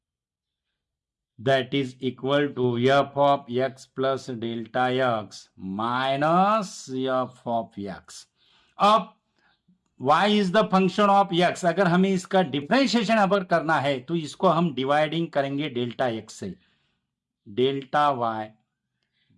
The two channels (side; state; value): both; identical; correlation 1.00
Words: that is equal to f of x plus delta x minus f of x. अब y is the function of x, अगर हमें इसका डिफरेंशिएशन अगर करना है तो इसको हम डिवाइडिंग करेंगे डेल्टा x से, delta y